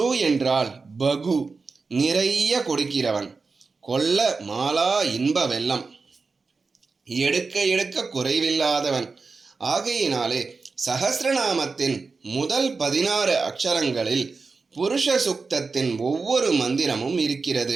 என்றால் பகு, நிறைய கொடுக்கிறவன். கொல்ல மாலா இன்ப வெள்ளம், எடுக்க குறைவில்லாதவன். ஆகையினாலே சஹஸ்ரநாமத்தின் முதல் 16 அக்ஷரங்களில் புருஷ சுக்தத்தின் ஒவ்வொரு மந்திரமும்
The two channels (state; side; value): quieter; left; 4.4 dB